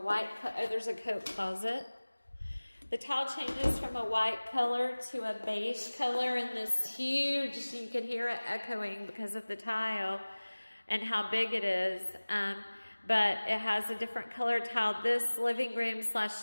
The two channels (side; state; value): both; inverted; correlation -1.00